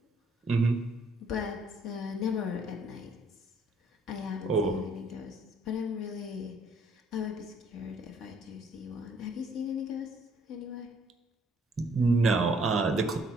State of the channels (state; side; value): normal; both; correlation 0.64